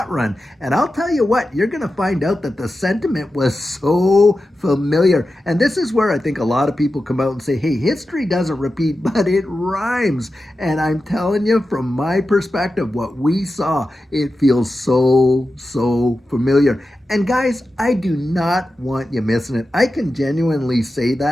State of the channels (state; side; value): normal; both; correlation 0.92